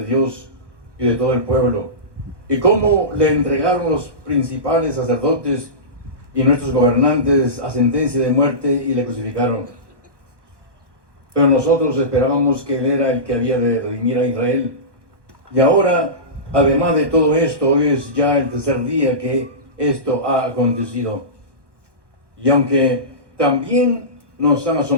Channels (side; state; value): left; late; 1.1 ms